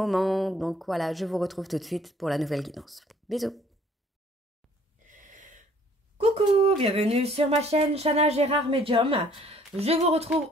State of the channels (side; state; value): both; normal; correlation 0.58